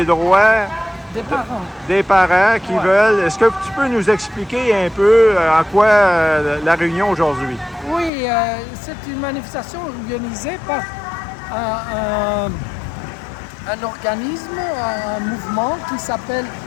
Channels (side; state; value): right; drops out; at 8.1 s